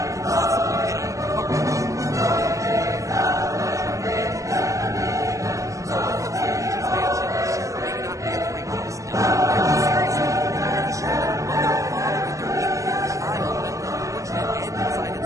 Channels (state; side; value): late; left; 0.16 ms